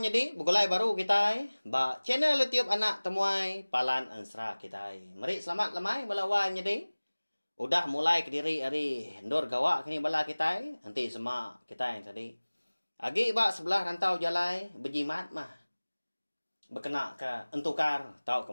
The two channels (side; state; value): both; inverted; correlation -1.00